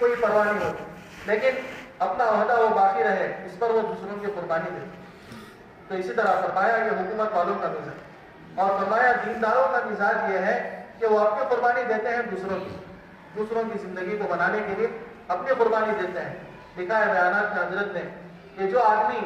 پرواہ نہیں ہوتی، لیکن اپنا عہدہ وہ باقی رہے، اس پر وہ دوسروں کی قربانی دے۔ تو اسی طرح فرمایا یہ حکومت والوں کا مزاج، اور فرمایا دینداروں کا مزاج یہ ہے کہ وہ اپنی قربانی دیتے ہیں دوسروں کی زندگی کو بنانے کے لیے اپنی قربانی دیتے ہیں۔ لکھا ہے بیانات میں حضرت نے کہ جو آدمی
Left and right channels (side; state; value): both; identical; correlation 1.00